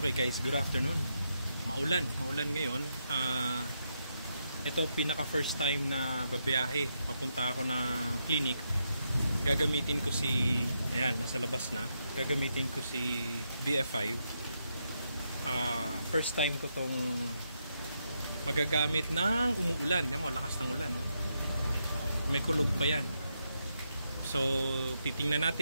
guys, good afternoon. Maulan ngayon. Ito pinaka first time na babiyahe. Papunta ako ng clinic. Gagamitin ko si, ayan, nasa labas na. Gagamitin ko si VF5. First time ko tong magagamit ng umuulan. Yan mo, lakas ng ulan, no? May kulog pa yan. So, titingnan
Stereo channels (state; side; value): inverted; both; correlation -0.81